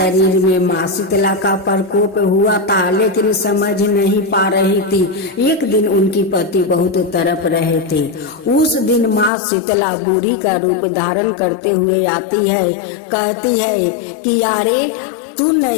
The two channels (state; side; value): drops out; right; at 9.3 s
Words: में माँ शीतला का प्रकोप हुआ था, लेकिन समझ नहीं पा रही थी। एक दिन उनकी पति बहुत तड़प रहे थे। उस दिन माँ शीतला बुढ़ी का रूप धारण करते हुए आती है, कहती है कि यारे तू